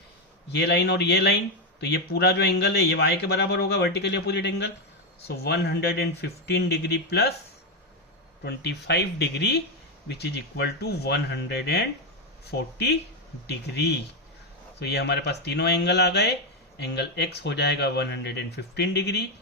ये लाइन और ये लाइन, तो ये पूरा जो एंगल है ये y के बराबर होगा, vertically opposite angle. So 115 degree plus 25 degree which is equal to 140 degree. तो ये हमारे पास तीनों एंगल आ गए। एंगल x हो जाएगा 115 डिग्री,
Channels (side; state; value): both; normal; correlation 0.07